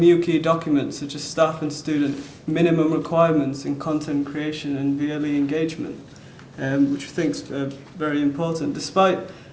key documents such as staff and student minimum requirements in content creation and VLE engagement, which we think is very important.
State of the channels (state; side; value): identical; both; correlation 1.00